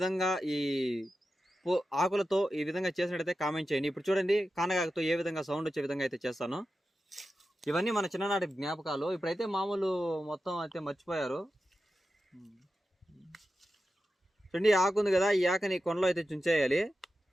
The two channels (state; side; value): normal; both; correlation 0.91